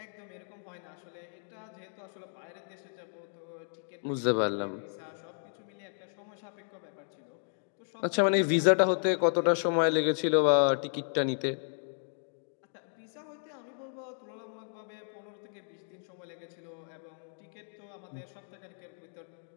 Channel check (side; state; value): right; silent; digital silence